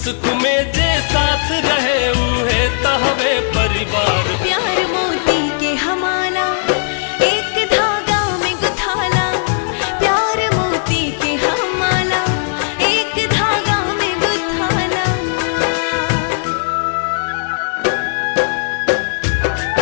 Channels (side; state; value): right; silent; digital silence